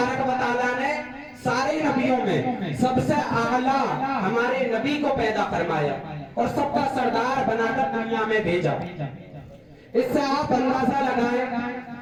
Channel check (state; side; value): identical; both; correlation 1.00